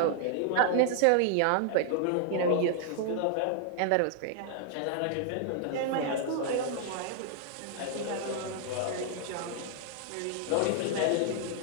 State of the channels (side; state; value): both; different; correlation 0.00